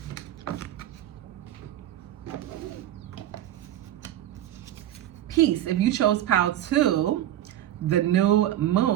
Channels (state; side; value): quieter; left; 12.6 dB